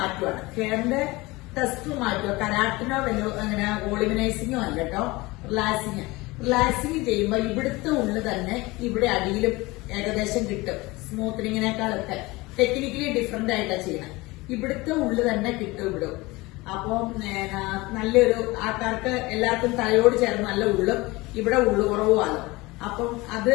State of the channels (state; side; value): quieter; right; 22.1 dB